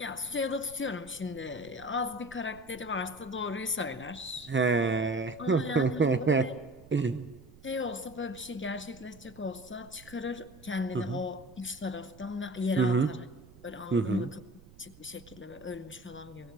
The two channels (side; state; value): right; noise; rumble, 21 dB below the sound